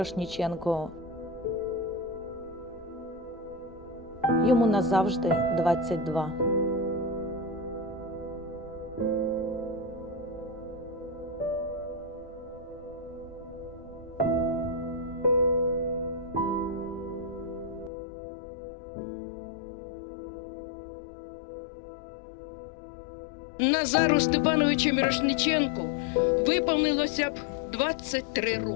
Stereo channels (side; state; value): right; drops out; at 17.9 s